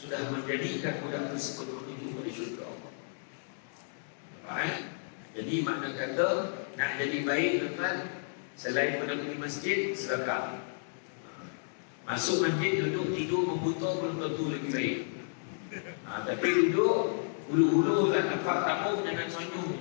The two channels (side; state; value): right; silent; digital silence